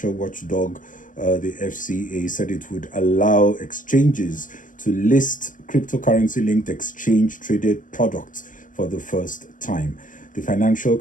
watchdog, the FCA, said it would allow exchanges to list cryptocurrency-linked exchange-traded products for the first time. The Financial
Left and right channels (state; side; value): late; right; 0.38 ms